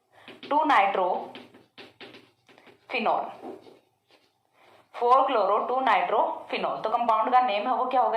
2 nitro phenol, 4 chloro 2 nitro phenol. तो कंपाउंड का नेम है वो क्या होगा,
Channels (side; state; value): both; identical; correlation 1.00